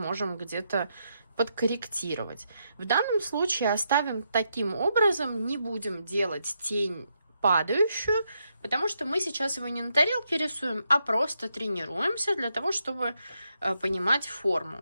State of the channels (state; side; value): inverted; both; correlation -0.80